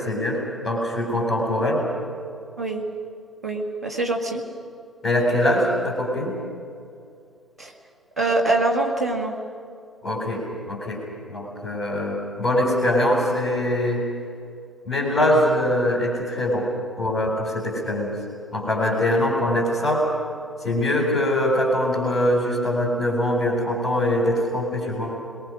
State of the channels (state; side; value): normal; both; correlation 0.57